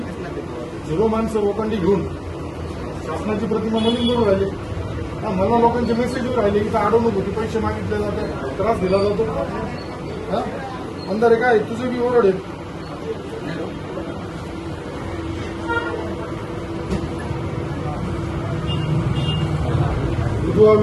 0 माणसं लोकांनी घेऊन शासनाची प्रतिमा मलिन करून राहिले मला लोकांचे मेसेज राहिले की अडवणूक होती पैसे मागितले जाते त्रास दिला जातो हा अंधारे काय तुझे बी ओरड आहे विधवा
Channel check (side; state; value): both; identical; correlation 1.00